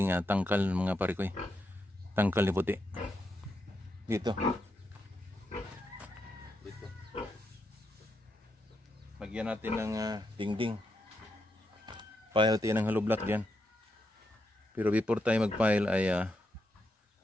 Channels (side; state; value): both; normal; correlation 0.83